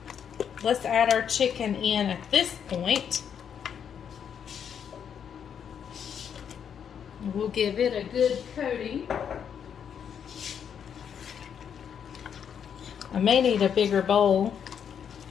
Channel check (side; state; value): right; quieter; 8.0 dB